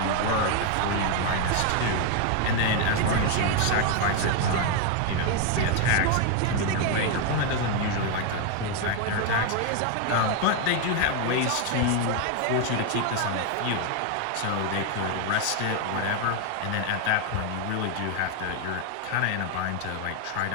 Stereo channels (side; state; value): both; different; correlation 0.01